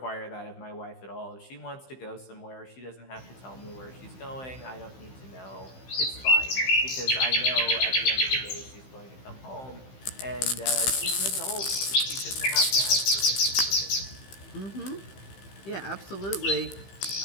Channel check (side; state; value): right; late; 15 ms